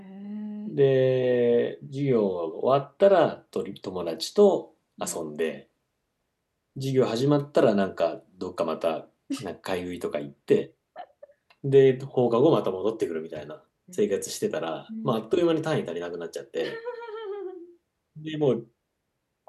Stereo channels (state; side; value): identical; both; correlation 1.00